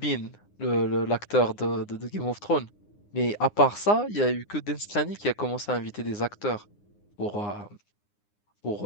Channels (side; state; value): right; late; 9.7 ms